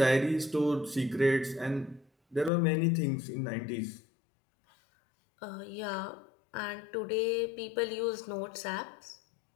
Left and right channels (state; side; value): drops out; right; at 2.5 s